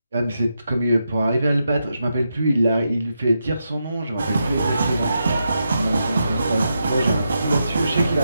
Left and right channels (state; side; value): inverted; both; correlation -0.85